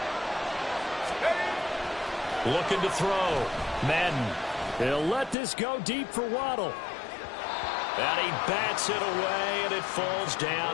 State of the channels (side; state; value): right; drops out; at 5.4 s